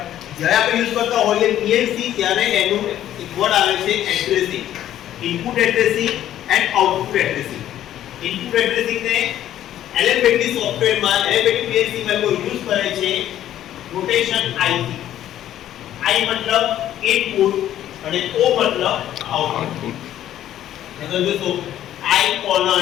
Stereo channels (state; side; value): quieter; right; 11.9 dB